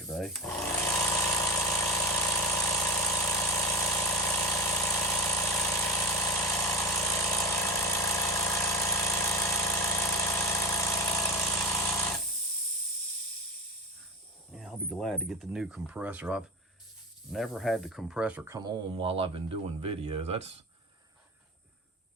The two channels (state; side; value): normal; both; correlation 0.21